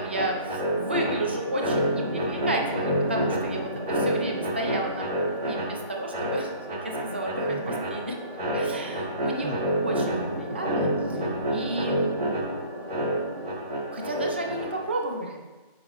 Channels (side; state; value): both; inverted; correlation -0.46